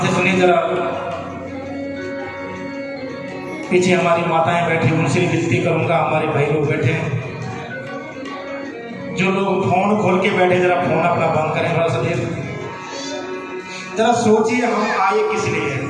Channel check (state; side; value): identical; both; correlation 1.00